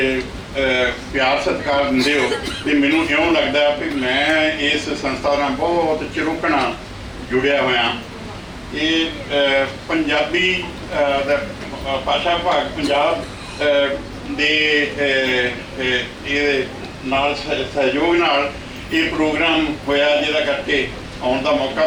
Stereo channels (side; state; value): both; identical; correlation 1.00